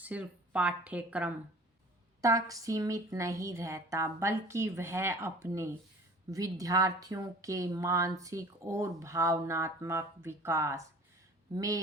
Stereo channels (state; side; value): normal; both; correlation 0.45